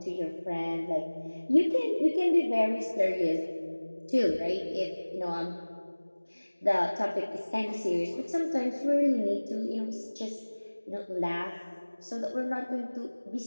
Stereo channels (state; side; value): inverted; both; correlation -1.00